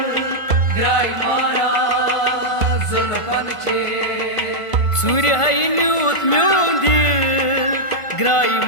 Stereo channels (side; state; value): right; late; 1.5 ms